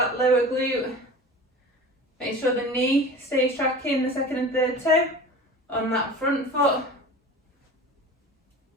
lower glute. Make sure the knee stays tracking the second and third toe on that front foot.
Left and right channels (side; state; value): both; normal; correlation 0.37